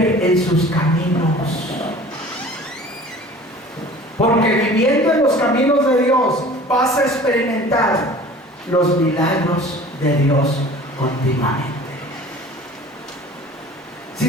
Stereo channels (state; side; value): normal; both; correlation 0.44